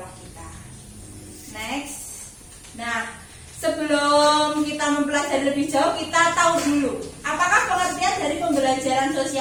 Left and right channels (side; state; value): both; identical; correlation 1.00